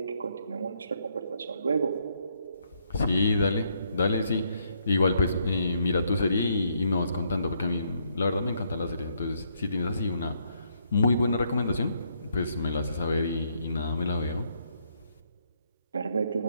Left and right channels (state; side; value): inverted; both; correlation -0.73